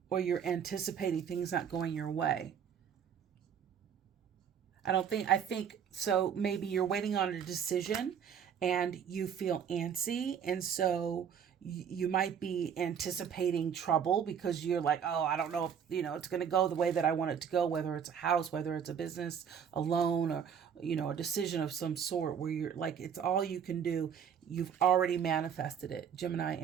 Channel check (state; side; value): quieter; left; 7.9 dB